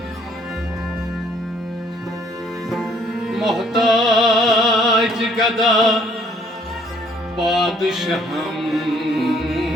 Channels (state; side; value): normal; both; correlation 0.63